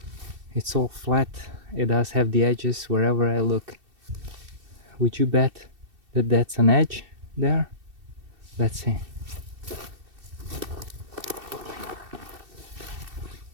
It's all flat. It does have the edges wherever I look. Would you bet that that's an edge there? Let's see.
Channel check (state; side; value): late; left; 2.7 ms